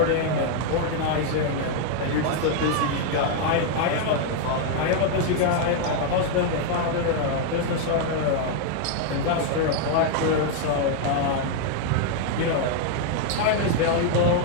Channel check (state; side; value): different; both; correlation 0.00